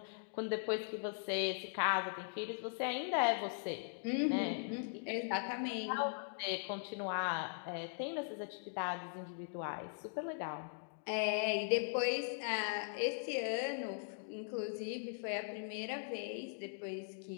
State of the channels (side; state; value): right; silent; digital silence